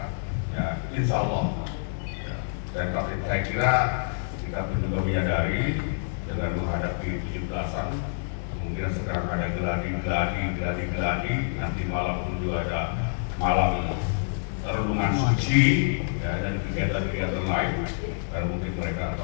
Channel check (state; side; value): silent; right; 59 dB below the other